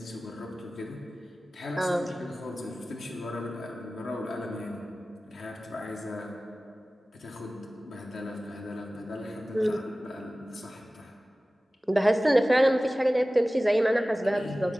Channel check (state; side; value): normal; both; correlation 0.97